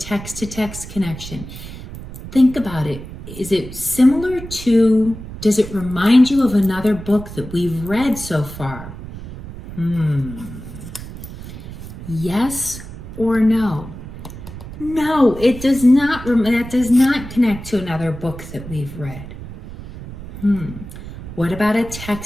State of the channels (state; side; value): noise; right; rumble, 12 dB below the sound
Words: connection. Think about it. Is it similar to, does it remind you of another book that we've read so far? Yes or no? No, it does not. That does not connect to another book that we've read. What about a